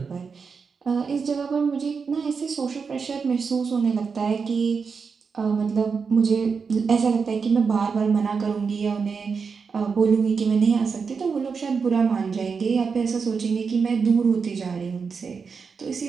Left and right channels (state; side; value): quieter; left; 5.5 dB